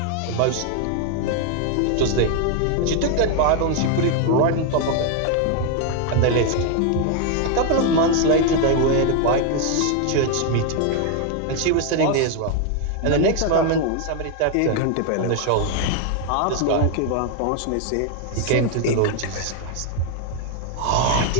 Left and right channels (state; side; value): different; both; correlation 0.01